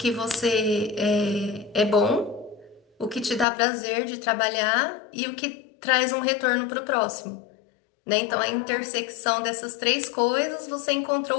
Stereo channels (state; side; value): drops out; right; at 3.5 s